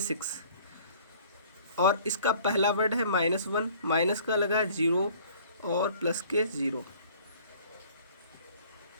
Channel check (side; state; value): both; inverted; correlation -0.53